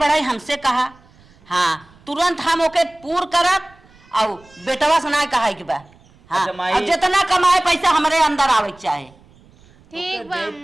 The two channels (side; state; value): right; noise; rumble, 28 dB below the sound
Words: हमसे कहा। हाँ तुरंत हम ओके पूर करब और बेटवा से ना कहा कि बा हाँ अच्छा, माई। अब जितना कमाए पैसा हमारे अंदर आवे के चाहे। ठीक बा